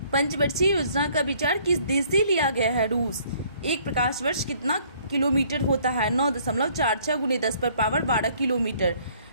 पंचवर्षीय योजना का विचार किस देश से लिया गया है? रूस। एक प्रकाश वर्ष कितना किलोमीटर होता है? 9.46 गुने 10 पर पावर 12 किलोमीटर।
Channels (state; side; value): inverted; both; correlation -0.60